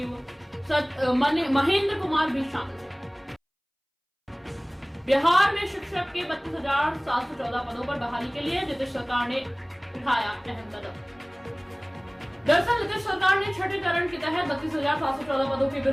महेंद्र कुमार भी शामिल थे। बिहार में शिक्षक के 32,714 पदों पर बहाली के लिए नीतीश सरकार ने उठाया अहम कदम। दरअसल नीतीश सरकार ने छठे चरण के तहत 32,714 पदों के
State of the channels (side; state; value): both; identical; correlation 1.00